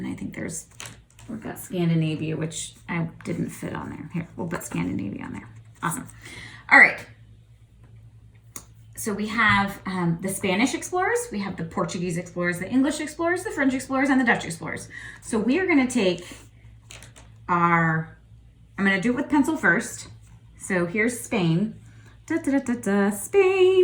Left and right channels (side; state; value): both; identical; correlation 1.00